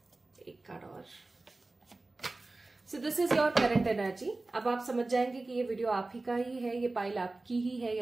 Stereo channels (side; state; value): left; quieter; 3.2 dB